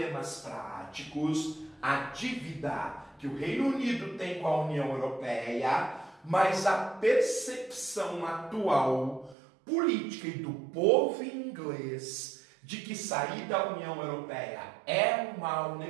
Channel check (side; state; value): left; drops out; at 9.3 s